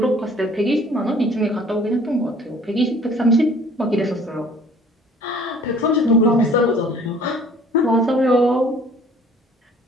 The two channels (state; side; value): normal; both; correlation 0.53